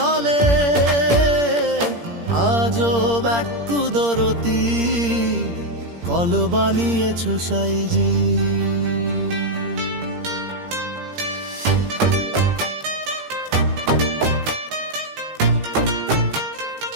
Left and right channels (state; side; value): late; left; 17 ms